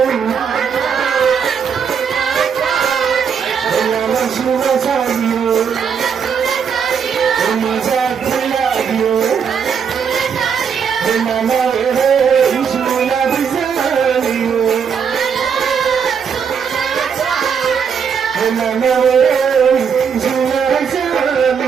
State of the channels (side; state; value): left; quieter; 6.8 dB